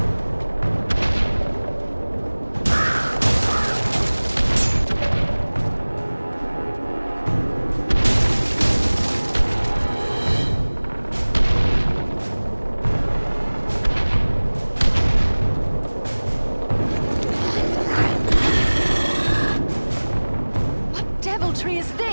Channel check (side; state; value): both; inverted; correlation -1.00